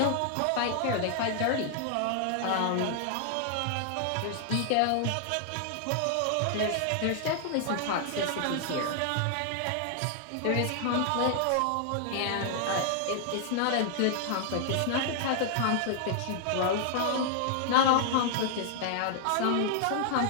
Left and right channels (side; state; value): both; different; correlation 0.00